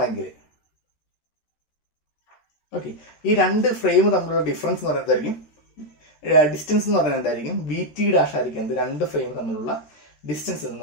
ഓക്കെ, ഈ രണ്ട് ഫ്രെയിം തമ്മിലുള്ള ഡിഫറൻസ് എന്ന് പറയുന്നതായിരിക്കും ഡിസ്റ്റൻസ് എന്ന് പറയുന്നത് എന്തായിരിക്കും, വി ടി ഡാഷ് ആയിരിക്കും എന്ത്, രണ്ട് ഫ്രെയിം തമ്മിലുള്ള ഡിസ്റ്റൻസ് എന്ന്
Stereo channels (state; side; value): late; right; 13 ms